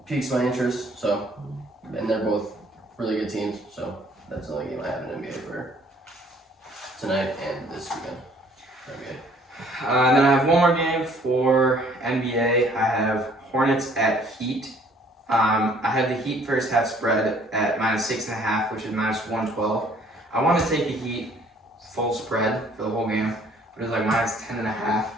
piques my interest. So, and they're both really good teams. So that's the only game I have in NBA for tonight and this weekend. And then I have one more game for NBA. I have Hornets at Heat. I have the Heat first half spread at -6.5, which is -112. I want to take the Heat full spread for the whole game, but it's like -10.5. I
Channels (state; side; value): normal; both; correlation 0.59